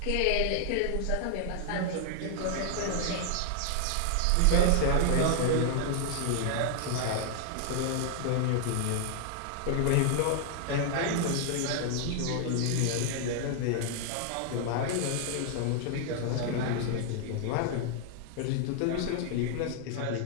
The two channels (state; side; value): different; both; correlation 0.00